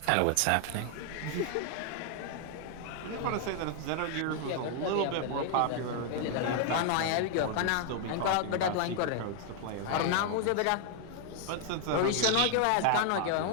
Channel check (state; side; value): different; both; correlation 0.00